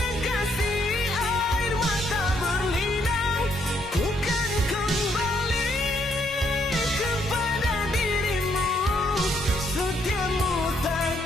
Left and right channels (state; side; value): normal; both; correlation 0.72